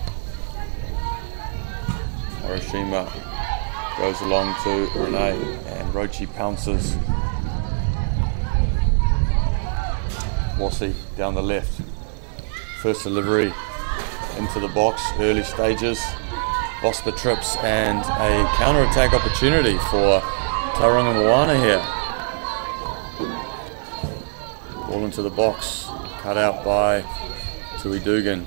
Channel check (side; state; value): left; silent; digital silence